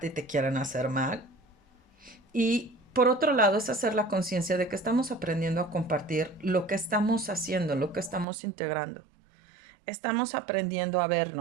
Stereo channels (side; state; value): left; drops out; at 8.2 s